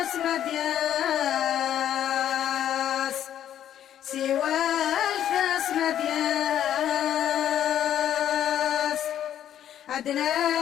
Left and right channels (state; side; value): quieter; right; 10.7 dB